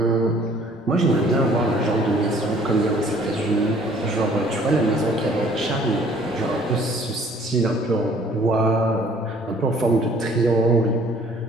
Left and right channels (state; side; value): normal; both; correlation 0.56